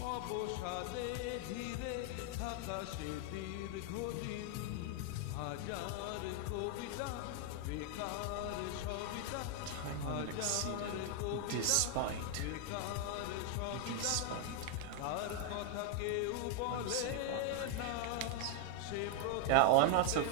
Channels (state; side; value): different; both; correlation 0.00